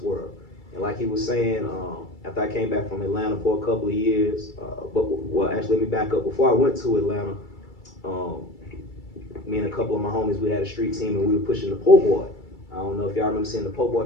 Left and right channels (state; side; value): late; right; 2.3 ms